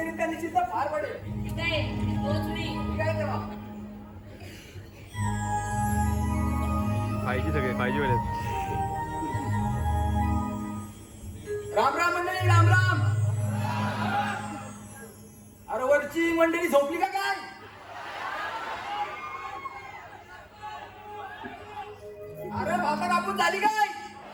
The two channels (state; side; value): identical; both; correlation 1.00